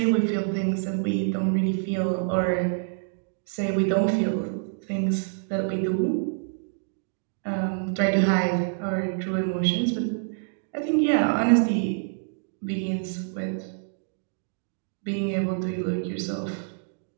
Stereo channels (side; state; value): left; silent; digital silence